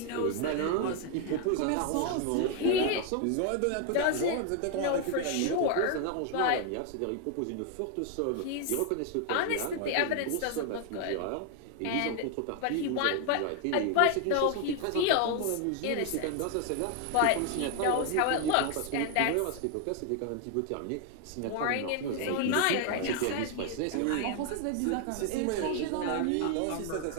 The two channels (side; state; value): both; different; correlation 0.00